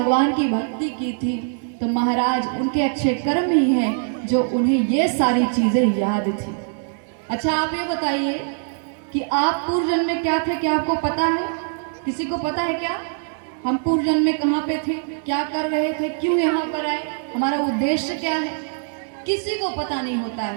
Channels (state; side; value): silent; left; 64 dB below the other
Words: की भक्ति की थी। तो महाराज उनके अच्छे कर्म ही हैं जो उन्हें ये सारी चीजें याद थी। अच्छा आप ये बताइए कि आप पूर्व जन्म में क्या थे, क्या आपको पता है? किसी को पता है क्या हम पूर्व जन्म में कहाँ पे थे, क्या कर रहे थे, क्यों यहाँ पर आए, हमारा उद्देश्य क्या है? किसी को पता नहीं होता